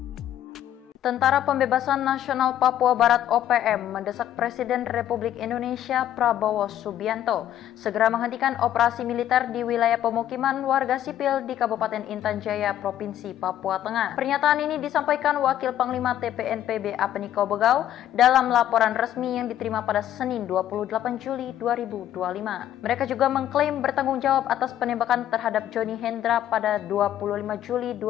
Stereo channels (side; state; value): right; quieter; 11.6 dB